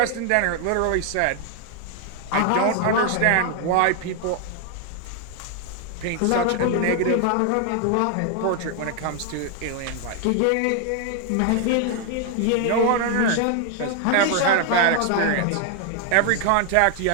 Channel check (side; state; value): both; different; correlation 0.00